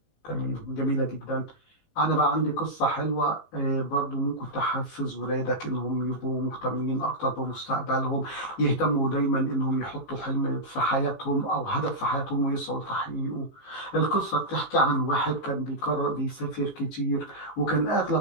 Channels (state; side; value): late; right; 19 ms